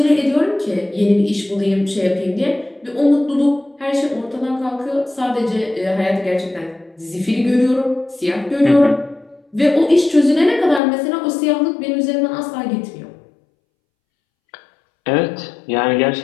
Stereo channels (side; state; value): right; drops out; at 10.8 s